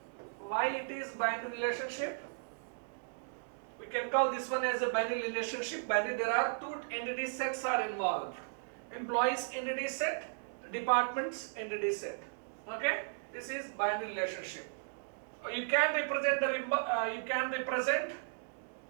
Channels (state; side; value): silent; left; digital silence